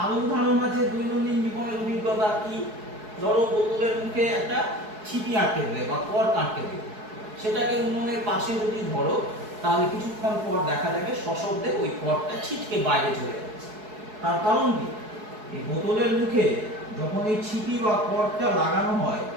আরো উদাহরণ আছে দৈনন্দিন জীবনের অভিজ্ঞতা। কি? ধরো বোতলের মুখে একটা ছিপি আটকে দেবে বা কর্ক আটকে দেবে, সেটাকে উনুনের পাশে যদি ধরো তাহলে কিছুক্ষণ পর দেখা যাবে সশব্দে ওই কর্কটা ছিটকে বাইরে চলে যাচ্ছে। তার কারণ কি? এই বোতলের মুখে যখন এই ছিপি বা কর্কটা লাগানো হয়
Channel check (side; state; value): left; late; 4.7 ms